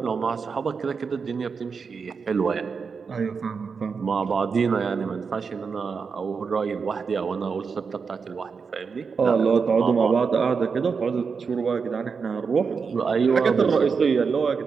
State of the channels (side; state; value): left; quieter; 5.4 dB